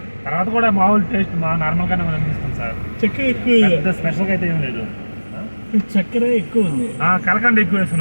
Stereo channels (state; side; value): inverted; both; correlation -1.00